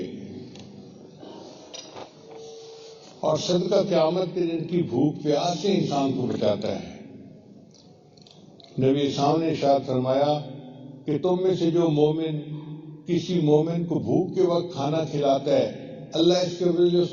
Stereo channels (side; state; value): both; identical; correlation 1.00